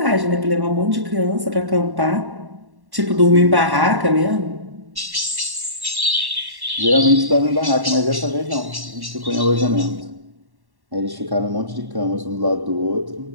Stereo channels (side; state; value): left; late; 1.1 ms